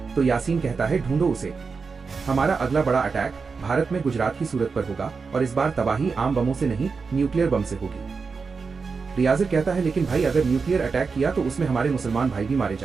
तो यासीन कहता है, ढूंढो उसे। हमारा अगला बड़ा अटैक भारत में गुजरात की सूरत पर होगा, और इस बार तबाही आम बमों से नहीं, न्यूक्लियर बम से होगी। रियाज कहता है, लेकिन भाई अगर न्यूक्लियर अटैक किया तो उसमें हमारे मुसलमान भाई भी मारे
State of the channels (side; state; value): left; quieter; 5.0 dB